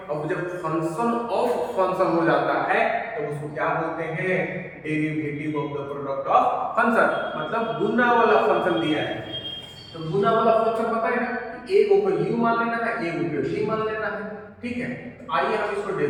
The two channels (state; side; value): identical; both; correlation 1.00